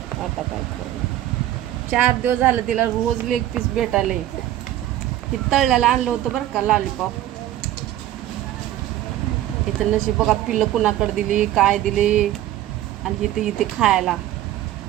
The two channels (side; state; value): left; quieter; 13.5 dB